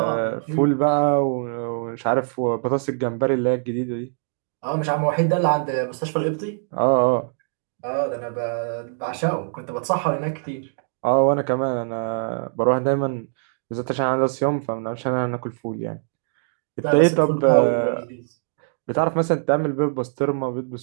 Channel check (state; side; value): silent; left; digital silence